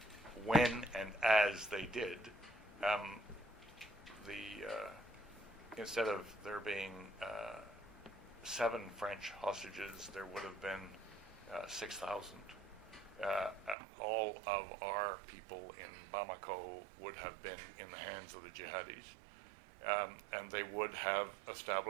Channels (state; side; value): drops out; left; at 13.8 s